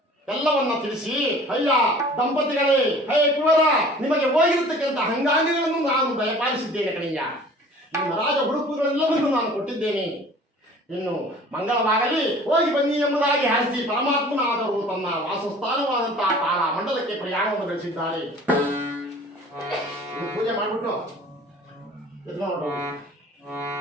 ಎಲ್ಲವನ್ನ ತಿಳಿಸಿ, ಅಯ್ಯ ದಂಪತಿಗಳೇ, ಹೇ ಕುವರ, ನಿಮಗೆ ಹೋಗಿರತಕ್ಕಂಥ ಅಂಗಾಂಗಗಳನ್ನು ನಾನು ದಯಪಾಲಿಸಿದ್ದೇನೆ ಕಣಯ್ಯ. ನಿಮ್ಮ ರಾಜ ಹುಡುಕುಗಳೆಲ್ಲವನ್ನೂ ನಾನು ಕೊಟ್ಟಿದ್ದೇನೆ. ಇನ್ನು ಮಂಗಳವಾಗಲಿ, ಹೋಗಿ ಬನ್ನಿ ಎಂಬುದಾಗಿ ಹರಿಸಿ ಪರಮಾತ್ಮನಾದರೂ ತನ್ನ ವಾಸಸ್ಥಾನವಾದಂತಹ ತಾರ ಮಂಡಲಕ್ಕೆ ಪ್ರಯಾಣವನ್ನು ಬೆಳೆಸಿದ್ದಾರೆ. ಪೂಜೆ ಮಾಡಿಬಿಟ್ಟು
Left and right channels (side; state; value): both; normal; correlation 0.47